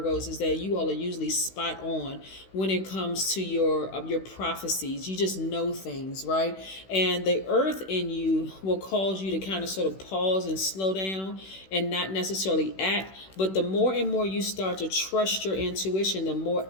is that you all are usually spot on when it comes to your prophecies. You just know things, right? And the earth in you will cause you to kind of sort of pause and slow down and not necessarily act. But the more and more you start to trust your intuition, the more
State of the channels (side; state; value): right; late; 16 ms